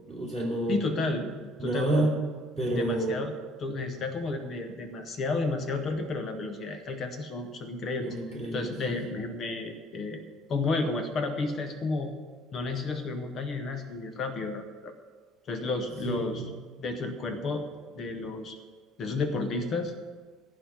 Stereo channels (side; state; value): both; normal; correlation 0.59